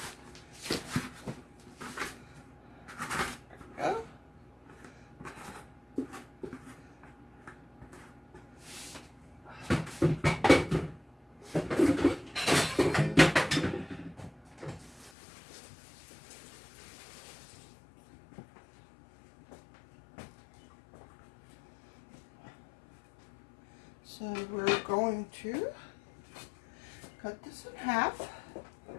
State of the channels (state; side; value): drops out; right; at 15.1 s